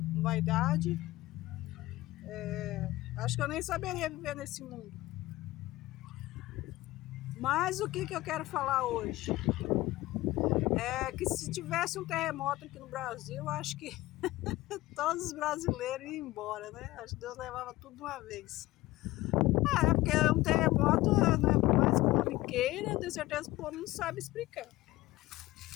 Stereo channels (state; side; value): quieter; right; 18.1 dB